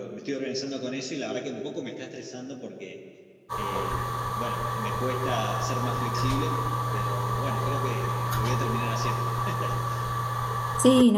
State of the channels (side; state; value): both; identical; correlation 1.00